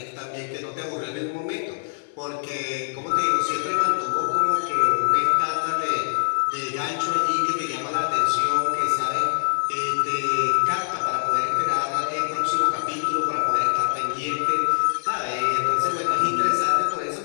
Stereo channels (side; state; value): right; silent; digital silence